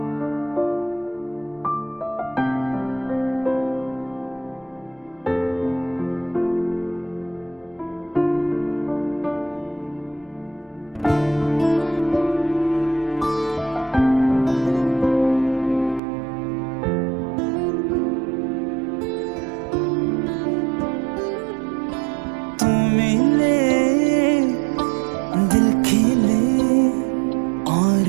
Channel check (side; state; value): left; drops out; at 16.0 s